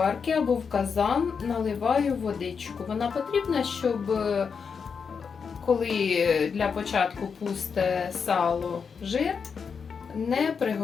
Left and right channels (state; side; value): quieter; right; 6.0 dB